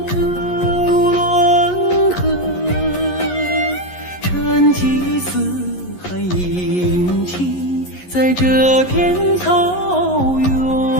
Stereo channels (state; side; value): late; right; 11 ms